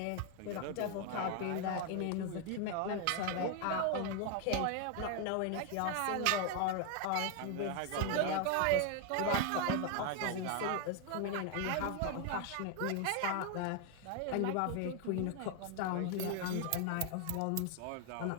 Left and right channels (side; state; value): both; different; correlation 0.01